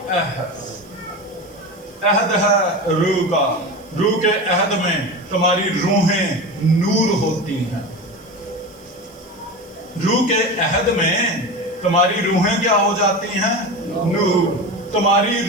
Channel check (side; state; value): right; noise; hiss, 28 dB below the sound